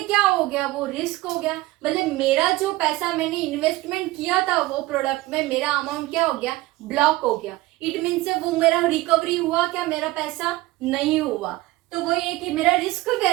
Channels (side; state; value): left; quieter; 19.0 dB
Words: क्या हो गया? वो रिस्क हो गया। मतलब मेरा जो पैसा मैंने इन्वेस्टमेंट किया था वो प्रोडक्ट में, मेरा अमाउंट क्या हो गया? ब्लॉक हो गया। इट मीन से वो मेरा रिकवरी हुआ क्या? मेरा पैसा नहीं हुआ। तो वो ये कि मेरा रिस्क